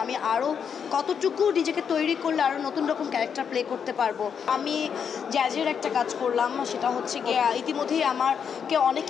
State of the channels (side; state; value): right; quieter; 7.2 dB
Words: আমি আরও কতটুকু নিজেকে তৈরি করলে আরও নতুন রকম ক্যারেক্টার প্লে করতে পারবো। আমি জ্যাজের একটা কাজ করলাম, সেটা হচ্ছে গিয়ে ইতিমধ্যেই আমাকে